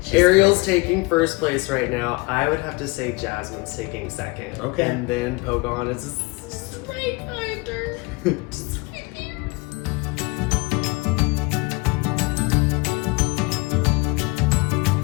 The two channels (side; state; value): right; quieter; 26.1 dB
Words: Ariel's taking first place right now. I would have to say Jasmine's taking second. Okay. And then Pocahontas is right behind her. Just right there.